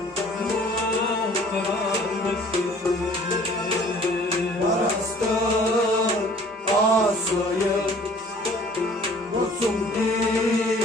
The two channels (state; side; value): normal; both; correlation 0.52